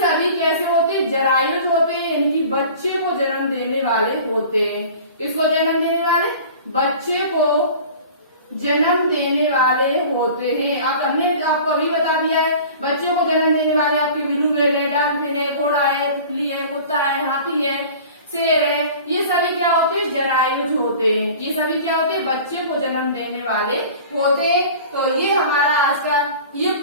कैसे होते हैं, जरायुज होते हैं, यानी कि बच्चे को जन्म देने वाले होते हैं। किसको जन्म देने वाले, बच्चे को जन्म देने वाले होते हैं। आप हमने आपको अभी बता दिया है, बच्चों को जन्म देने वाले आपके बिल्लू है, डॉल्फिन है, घोड़ा है, तितली है, कुत्ता है, हाथी है, शेर है। ये सभी क्या होते हैं, जरायुज होते हैं। ये सभी क्या होते हैं, बच्चे को जन्म देने वाले होते हैं। तो ये हमारा आज का, ये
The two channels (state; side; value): inverted; both; correlation -0.42